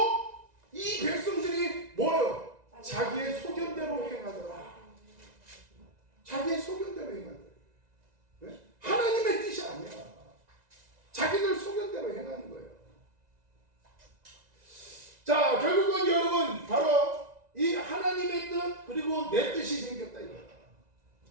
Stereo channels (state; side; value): late; left; 1.9 ms